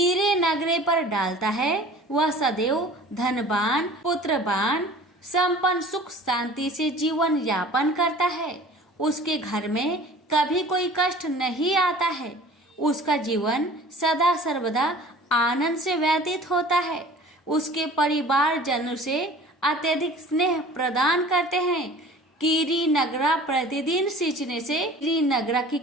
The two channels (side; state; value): both; normal; correlation 0.45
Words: नगरे पर डालता है, वह सदैव धनवान, पुत्रवान, संपन्न, सुख शांति से जीवन यापन करता है। उसके घर में कभी कोई कष्ट नहीं आता है। उसका जीवन सदा सर्वदा आनंद से व्यतीत होता है। उसके परिवारजनों से अत्यधिक स्नेह प्रदान करते हैं। कीरी नगरा प्रतिदिन सींचने से, कीरी नगरा की